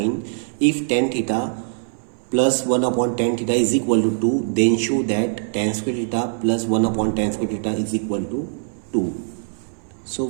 if tan theta plus 1 upon tan theta is equal to 2 then show that tan square theta plus 1 upon tan square theta is equal to 2। So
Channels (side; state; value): left; silent; 59 dB below the other